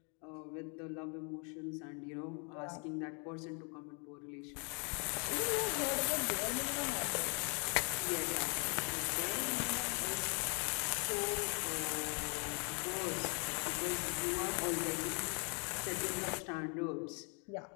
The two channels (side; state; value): right; quieter; 37.4 dB